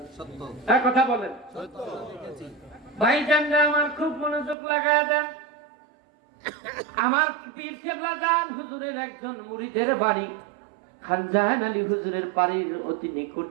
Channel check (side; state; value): left; drops out; at 4.5 s